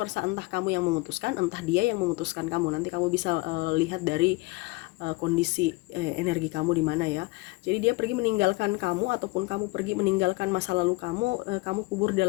entah kamu yang memutuskan, entah dia yang memutuskan kamu. Nanti kamu bisa lihat dari kondisi energi kamu di mana ya. Jadi dia pergi meninggalkan kamu, ataupun kamu pergi meninggalkan masa lalu kamu, kamu kubur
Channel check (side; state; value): right; quieter; 23.2 dB